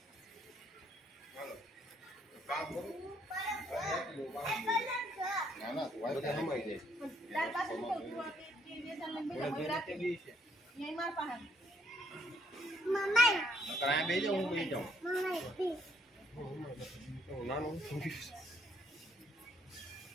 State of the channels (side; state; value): both; normal; correlation 0.69